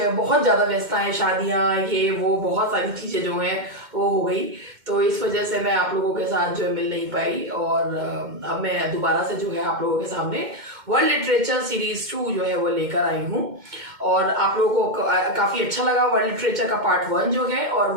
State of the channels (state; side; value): late; left; 2.1 ms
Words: ज़्यादा व्यस्तताएं, शादियाँ, ये वो बहुत सारी चीज़ें जो हैं वो हो गई। तो इस वजह से मैं आप लोगों के साथ जो है मिल नहीं पाई। और अब मैं दोबारा से जो है आप लोगों के सामने वर्ल्ड लिटरेचर सीरीज 2 जो है वो लेकर आई हूँ। और आप लोगों को काफ़ी अच्छा लगा वर्ल्ड लिटरेचर का पार्ट 1 जो है, और